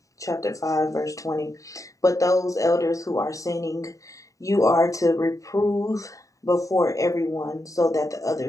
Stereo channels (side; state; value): right; late; 0.16 ms